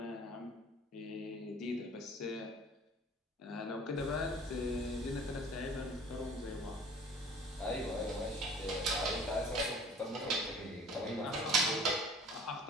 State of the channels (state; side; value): normal; both; correlation 0.48